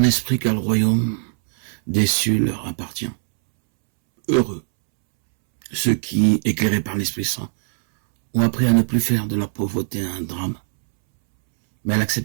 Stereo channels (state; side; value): silent; left; 65 dB below the other